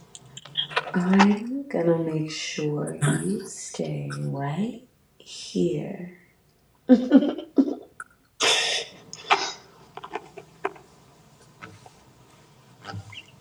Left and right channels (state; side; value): identical; both; correlation 1.00